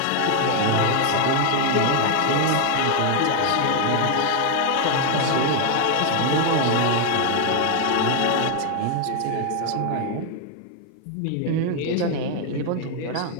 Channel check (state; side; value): different; both; correlation 0.01